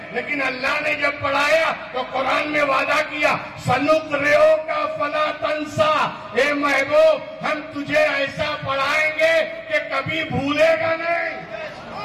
لیکن اللہ نے جب پڑھایا تو قرآن میں وعدہ کیا سنقرئو کا فلا تنسا. اے محبوب ہم تجھے ایسا پڑھائیں گے کہ کبھی بھولے گا نہیں.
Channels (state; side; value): identical; both; correlation 1.00